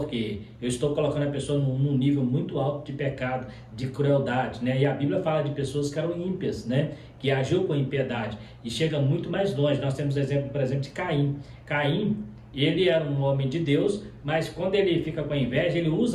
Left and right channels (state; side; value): identical; both; correlation 1.00